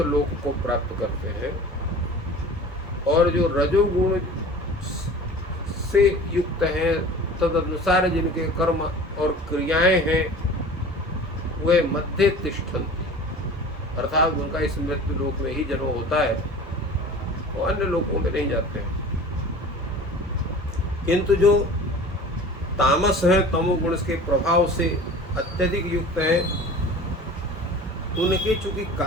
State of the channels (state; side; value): normal; both; correlation 0.41